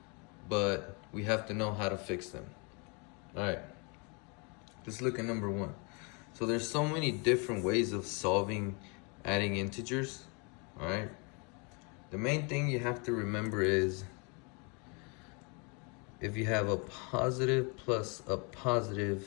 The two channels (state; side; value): quieter; right; 32.7 dB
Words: but we have to know how to fix them. All right, let's look at number one. So there's so many different ways of solving adding integers, all right? The main thing you have to remember is if you have a positive plus a